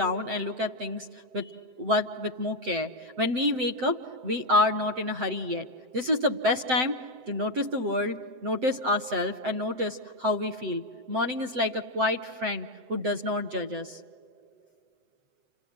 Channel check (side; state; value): left; late; 7.9 ms